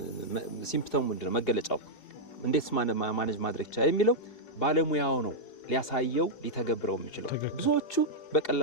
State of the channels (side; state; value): right; late; 4.8 ms